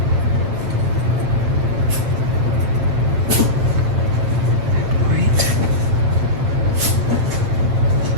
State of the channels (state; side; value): late; left; 8.3 ms